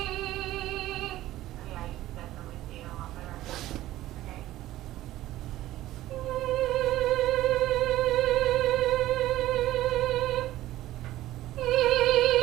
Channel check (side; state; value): left; quieter; 15.2 dB